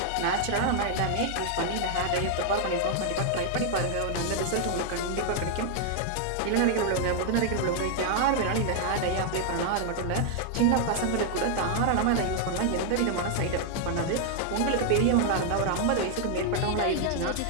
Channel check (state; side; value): different; both; correlation 0.00